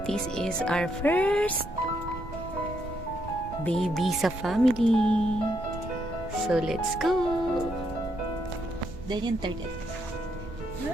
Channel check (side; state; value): right; noise; rumble, 12 dB below the sound